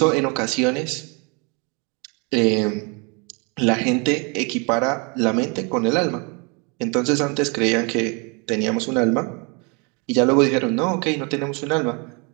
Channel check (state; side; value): quieter; left; 32.6 dB